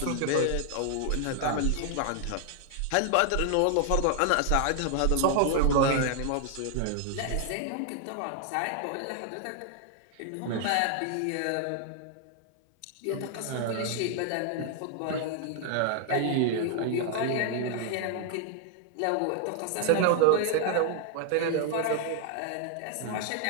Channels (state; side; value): different; both; correlation 0.00